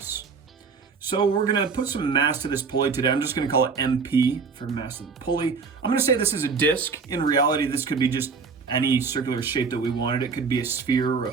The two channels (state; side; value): quieter; left; 5.1 dB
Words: So we're going to put some mass to this pulley today. I'm just going to call it MP for mass of the pulley. I'm going to say this is a disc. In reality, this could be just any circular shape that we wanted. It could be a sphere or a